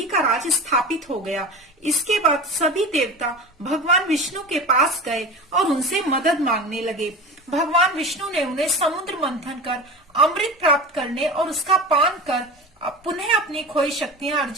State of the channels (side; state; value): both; normal; correlation 0.31